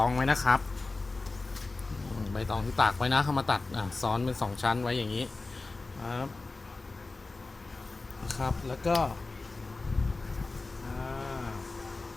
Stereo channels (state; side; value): quieter; right; 3.5 dB